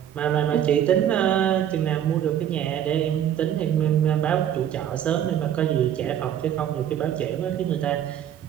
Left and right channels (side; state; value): left; quieter; 10.1 dB